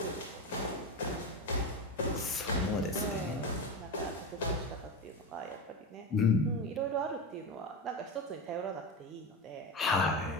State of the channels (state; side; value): normal; both; correlation 0.19